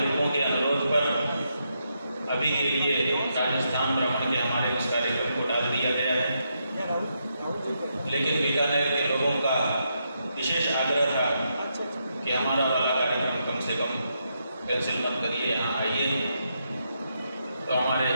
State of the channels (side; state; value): both; inverted; correlation -0.81